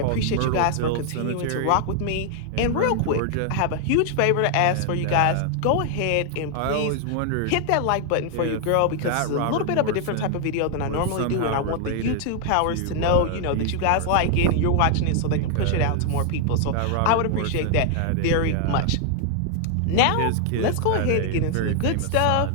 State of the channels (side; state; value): both; different; correlation 0.00